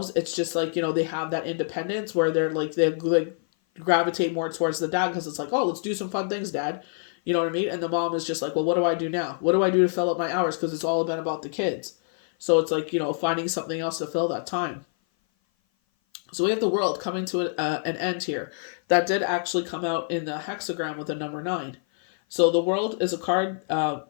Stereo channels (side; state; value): right; silent; 56 dB below the other